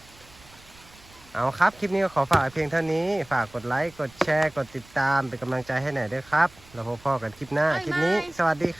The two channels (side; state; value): right; noise; rumble, 25 dB below the sound